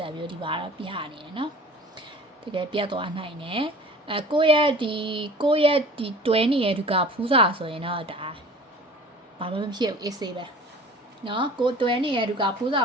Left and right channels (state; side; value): normal; both; correlation 0.44